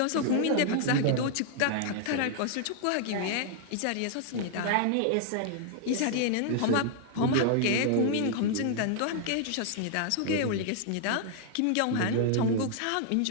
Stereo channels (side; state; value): both; different; correlation 0.00